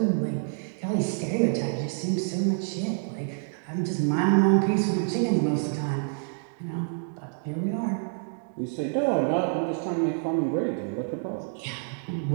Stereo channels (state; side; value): silent; left; digital silence